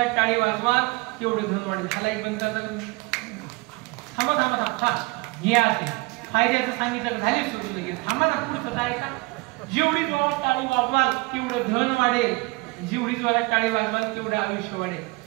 टाळी वाजवा तेवढं धन वाढेल. ह्याला एक बंद थांबा हे असे फायद्याचं सांगितलं झाले सुरू लगेच. थांबा ना पुढचं काय का? जेवढी जोरात टाळी वाजवाल तेवढं धन वाढेल, जेवढी जोरात टाळी वाजवाल तेवढं आयुष्य वाढेल.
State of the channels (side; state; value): left; quieter; 25.7 dB